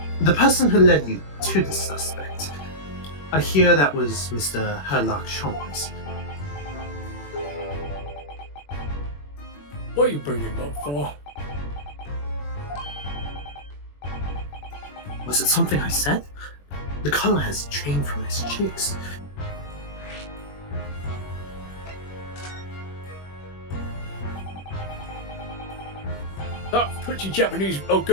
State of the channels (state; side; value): late; right; 21 ms